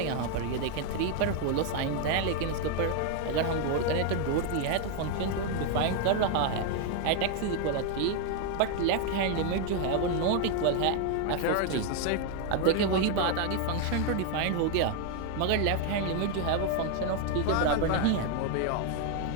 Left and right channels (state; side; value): different; both; correlation 0.01